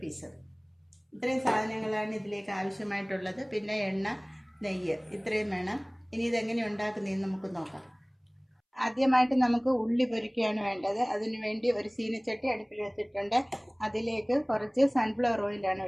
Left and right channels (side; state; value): both; identical; correlation 1.00